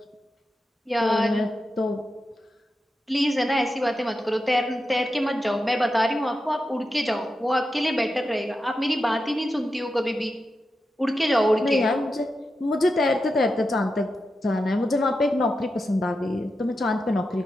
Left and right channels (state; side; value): normal; both; correlation 0.89